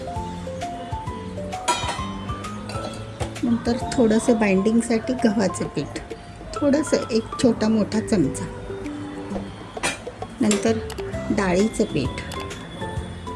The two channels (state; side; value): identical; both; correlation 1.00